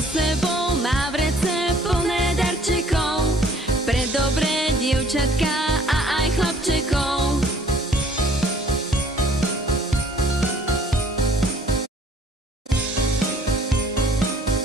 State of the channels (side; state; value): both; normal; correlation 0.56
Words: sebou má vrece plné darčekov pre dobré dievčatka a aj chlapčekov.